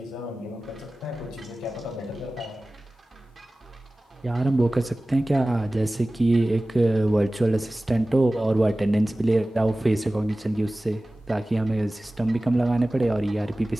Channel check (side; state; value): both; normal; correlation 0.97